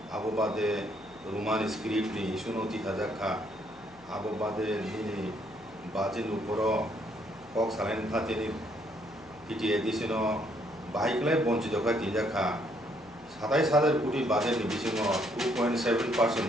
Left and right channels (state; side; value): noise; left; hum, 27 dB below the sound